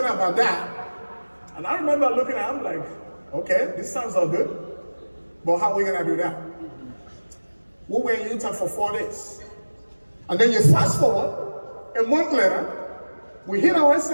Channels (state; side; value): inverted; both; correlation -1.00